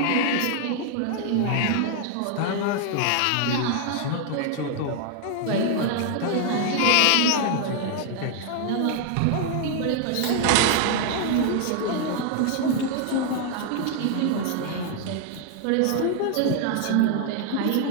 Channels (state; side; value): different; both; correlation 0.00